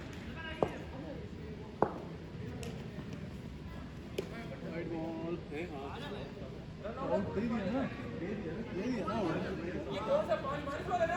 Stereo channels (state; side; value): identical; both; correlation 1.00